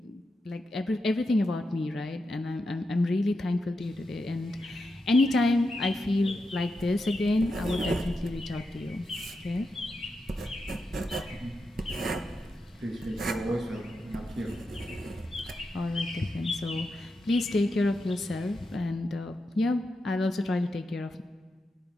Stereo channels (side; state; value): both; normal; correlation 0.87